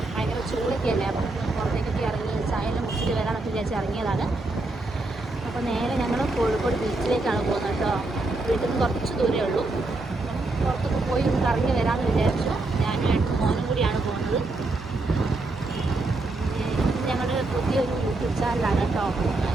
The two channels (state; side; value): quieter; left; 3.0 dB